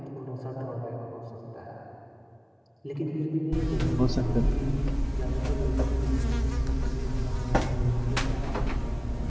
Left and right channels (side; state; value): both; identical; correlation 1.00